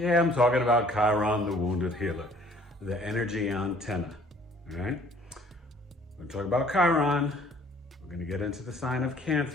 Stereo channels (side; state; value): both; normal; correlation 0.56